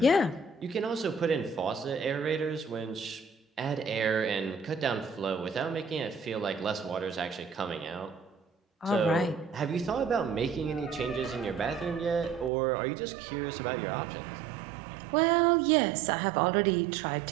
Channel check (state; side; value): drops out; left; at 12.5 s